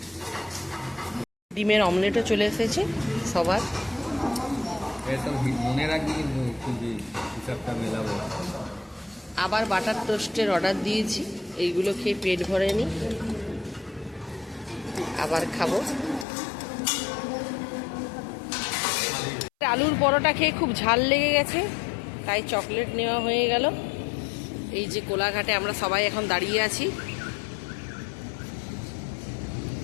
ডিমের অমলেটও চলে এসেছে সবার। আবার বাটার টোস্টের অর্ডার দিয়েছি, এইগুলো খেয়ে পেট ভরেনি, আবার খাবো। আলুর পরোটা খেয়ে খুব ঝাল লেগে গেছে, তাই চকলেট নেওয়া হয়ে গেল। এই যে কোলাঘাটে আমরা সবাই এখন দাঁড়িয়ে আছি।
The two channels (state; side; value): drops out; right; at 16.2 s